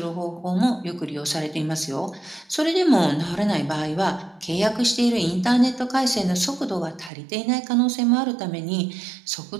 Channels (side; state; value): left; drops out; at 7.1 s